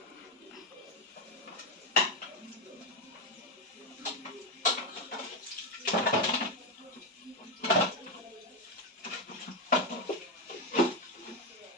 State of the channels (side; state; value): both; normal; correlation 0.10